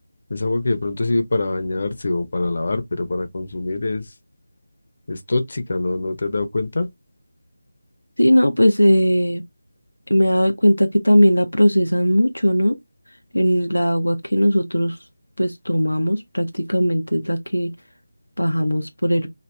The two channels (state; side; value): inverted; both; correlation -0.98